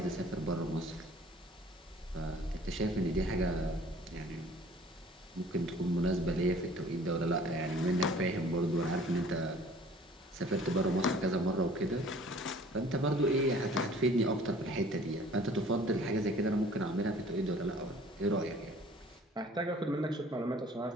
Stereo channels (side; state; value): both; normal; correlation 0.51